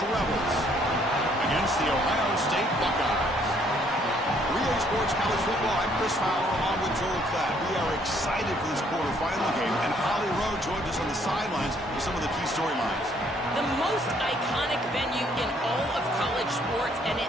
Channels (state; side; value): normal; both; correlation 0.65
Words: Rebels against the Ohio State Buckeyes. Relay Sports College Football, I'm Chris Fowler along with Joel Klatt. We are excited for this quarterfinal game, and Holly Rowe joins us on the sidelines with some of the key storylines. The most iconic venue in all of college sports, and it